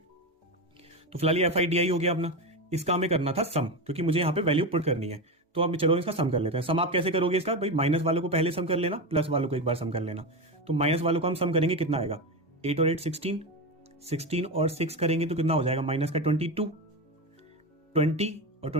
तो फिलहाल ये एफ आई डी आई हो गया अपना। इसका हमें करना था सम, क्योंकि मुझे यहाँ पे वैल्यू पुट करनी है। तो अब चलो इसका सम कर लेते हैं। सम आप कैसे करोगे इसका, भाई माइनस वालों को पहले सम कर लेना, प्लस वालों को एक बार सम कर लेना। तो माइनस वालों को हम सम करेंगे, कितना आएगा, 8 और 8 16, 16 और 6 करेंगे तो कितना हो जाएगा, माइनस का 22, 20 और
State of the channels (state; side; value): normal; both; correlation 0.17